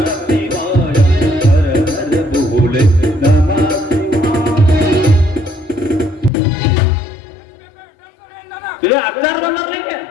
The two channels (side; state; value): right; drops out; at 6.3 s